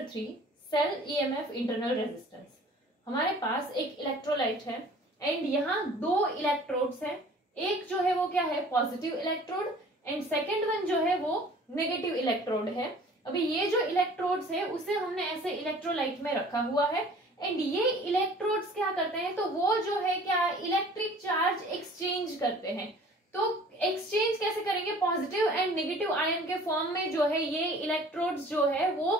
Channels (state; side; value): normal; both; correlation 0.49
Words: 3 cell EMF internal resistance. हमारे पास एक इलेक्ट्रोलाइट है एंड यहाँ दो इलेक्ट्रोड्स हैं। एक जो है वो क्या है, positive electrode, and second one जो है वो नेगेटिव इलेक्ट्रोड है। अभी ये जो इलेक्ट्रोड्स है उसे हमने ऐसे इलेक्ट्रोलाइट में रखा हुआ है एंड ये इलेक्ट्रोड्स क्या करते हैं, तो वो जो है क्या इलेक्ट्रिक चार्ज एक्सचेंज करते हैं। तो एक्सचेंज कैसे करेंगे, पॉजिटिव एंड नेगेटिव आयन के फॉर्म में जो है ये इलेक्ट्रोड्स जो है